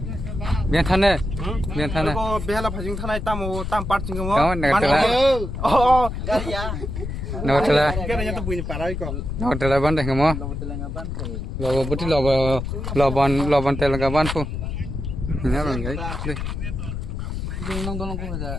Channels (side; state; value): left; noise; rumble, 5 dB below the sound